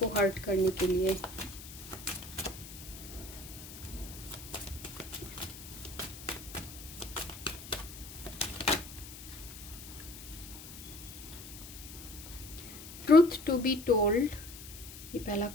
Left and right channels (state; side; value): noise; left; hiss, 13 dB below the sound